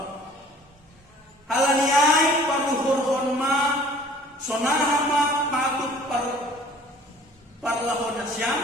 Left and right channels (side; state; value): both; normal; correlation 0.51